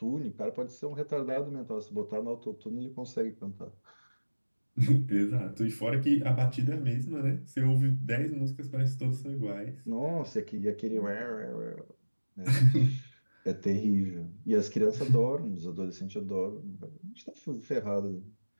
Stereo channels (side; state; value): both; inverted; correlation -1.00